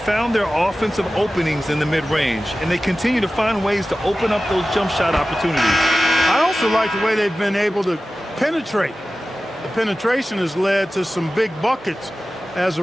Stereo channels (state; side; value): normal; both; correlation 0.95